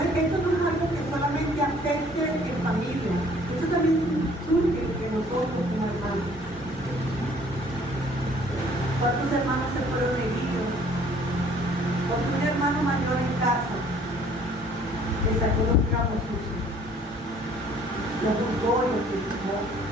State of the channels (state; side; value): normal; both; correlation 0.57